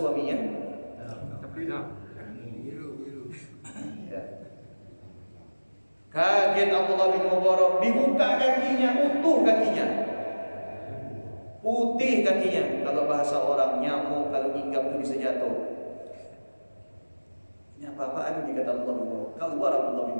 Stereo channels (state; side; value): inverted; both; correlation -1.00